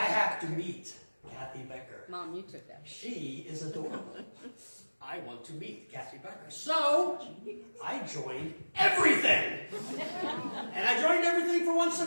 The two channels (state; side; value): inverted; both; correlation -1.00